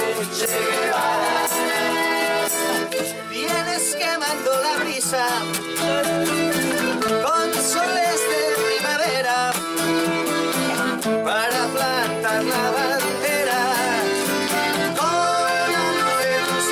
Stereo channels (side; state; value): both; identical; correlation 1.00